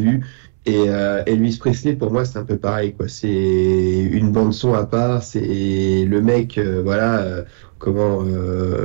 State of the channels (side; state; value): left; silent; digital silence